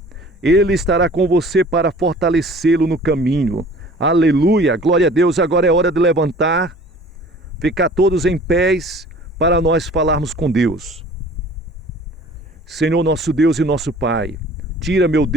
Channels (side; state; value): both; normal; correlation 0.48